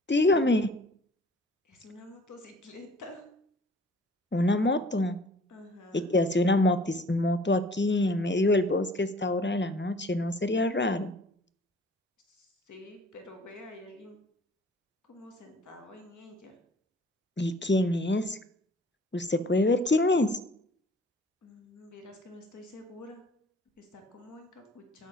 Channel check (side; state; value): both; normal; correlation 0.52